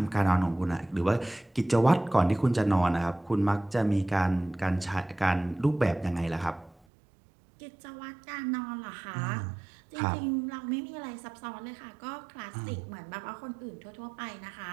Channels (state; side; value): drops out; left; at 6.8 s